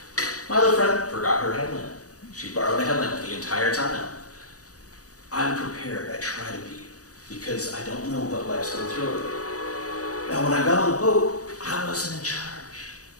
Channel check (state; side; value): late; right; 0.66 ms